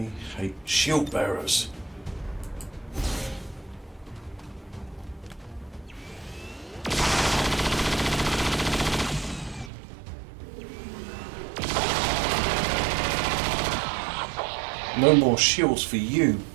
hate shield bearers. No more shields for you,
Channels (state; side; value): drops out; left; at 9.7 s